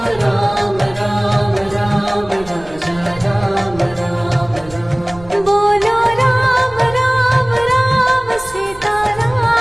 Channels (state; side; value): noise; right; rumble, 20 dB below the sound